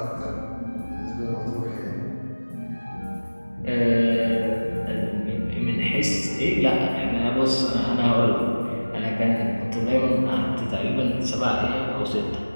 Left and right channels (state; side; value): inverted; both; correlation -1.00